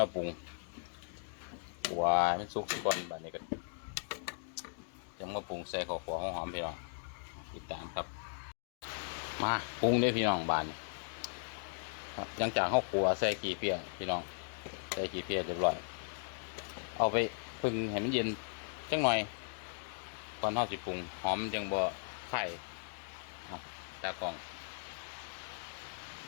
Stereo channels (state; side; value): silent; right; digital silence